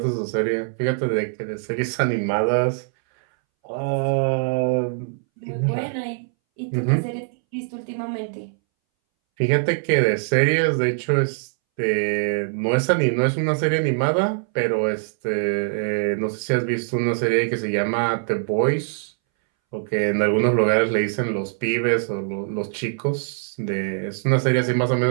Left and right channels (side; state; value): left; silent; 62 dB below the other